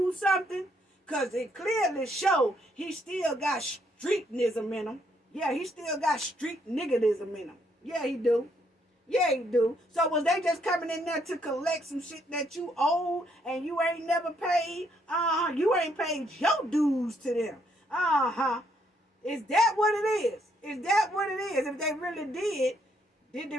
something? Because it clearly show he still got streetnism in him. Yeah, he still got street niggerism in him. Yeah, he do. Yeah, he do. So was they just coming in there to collect some shit that you owe and you ain't never paid? You ain't paid your dues to them. Is that what it is? Is that what it is? If they really did they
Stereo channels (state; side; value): normal; both; correlation 0.72